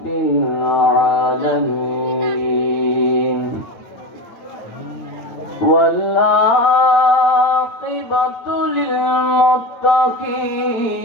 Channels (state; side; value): late; right; 8.8 ms